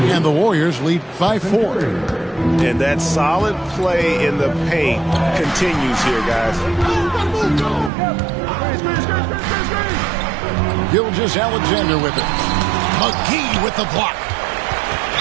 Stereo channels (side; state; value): left; drops out; at 7.9 s